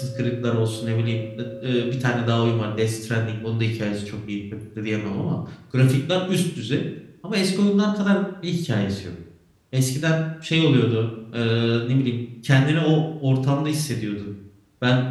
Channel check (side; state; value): both; identical; correlation 1.00